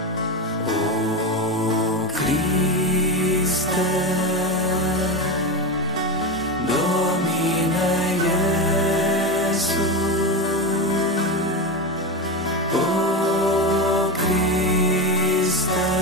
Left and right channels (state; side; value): normal; both; correlation 0.16